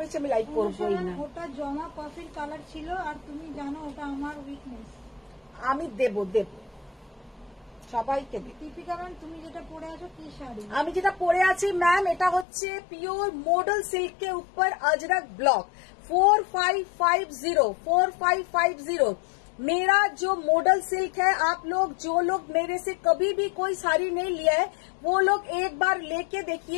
বেশি আমি লাইভ করবোই না। ওটা জমা কফির কালার ছিল, আর তুমি জানো ওটা আমার উইকনেস। আমি দেব সবাইকে দেব। দীপিকা ম্যাম তুমি যেটা পরে আছো কি শাড়ি? আমি যেটা পরে আছি ম্যাম, এটা হচ্ছে পিওর মডেল सिल्क के ऊपर अजरक ब्लॉक 4550। मेरा जो मॉडल सिल्क है, आप लोग जो लोग मेरे से कभी भी कोई साड़ी नहीं लिया है, वो लोग एक बार लेके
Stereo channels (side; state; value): right; drops out; at 12.5 s